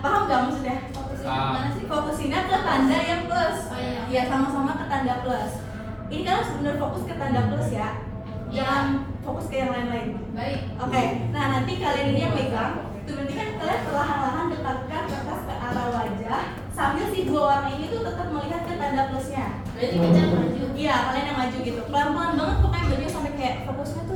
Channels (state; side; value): identical; both; correlation 1.00